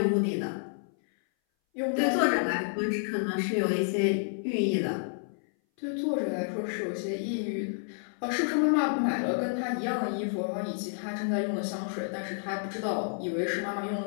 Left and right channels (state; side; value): silent; right; 58 dB below the other